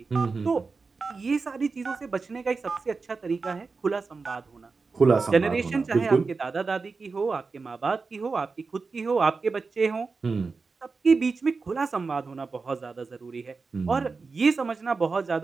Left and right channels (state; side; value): quieter; left; 4.4 dB